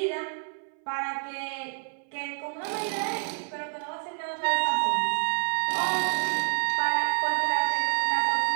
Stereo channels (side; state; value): left; silent; 59 dB below the other